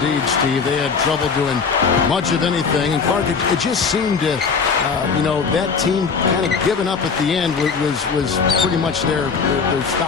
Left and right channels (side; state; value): right; quieter; 5.4 dB